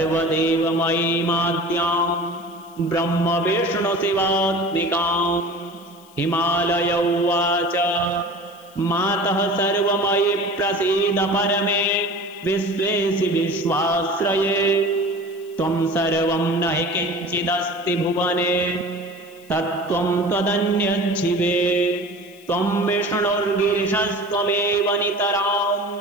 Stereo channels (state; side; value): noise; left; hiss, 27 dB below the sound